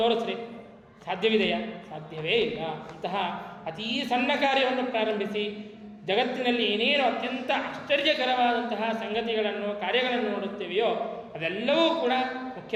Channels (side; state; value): both; identical; correlation 1.00